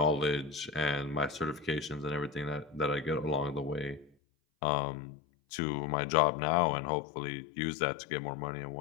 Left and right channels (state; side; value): drops out; right; at 4.1 s